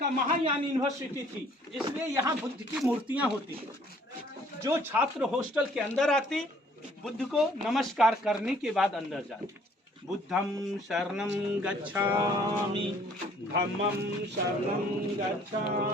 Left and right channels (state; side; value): normal; both; correlation 0.59